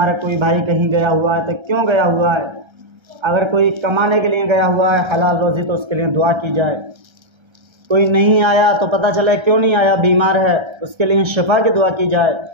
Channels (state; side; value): late; left; 1.3 ms